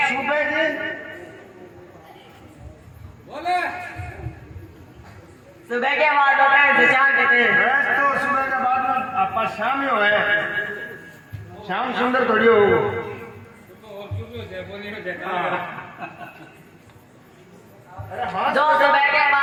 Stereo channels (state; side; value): identical; both; correlation 1.00